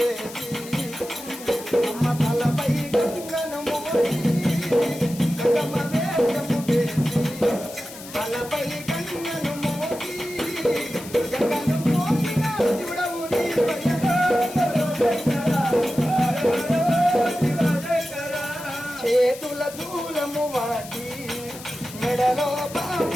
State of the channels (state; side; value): noise; left; hiss, 15 dB below the sound